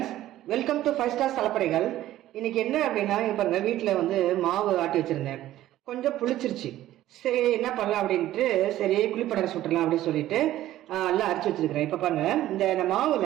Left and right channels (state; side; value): quieter; left; 14.0 dB